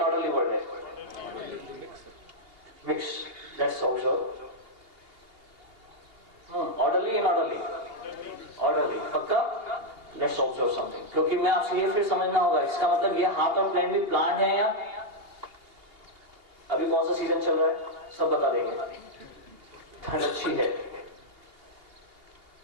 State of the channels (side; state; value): left; late; 2.8 ms